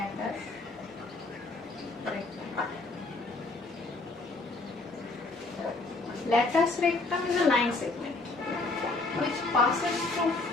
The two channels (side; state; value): right; quieter; 3.4 dB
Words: Latus rectum is a line segment which passes through